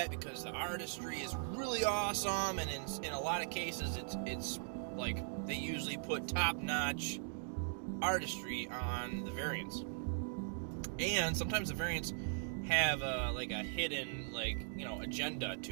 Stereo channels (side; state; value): left; silent; digital silence